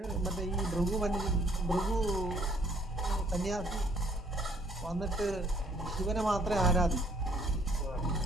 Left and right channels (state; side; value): normal; both; correlation 0.62